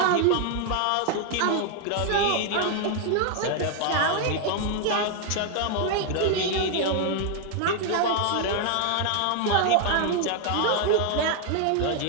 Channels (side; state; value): both; different; correlation 0.00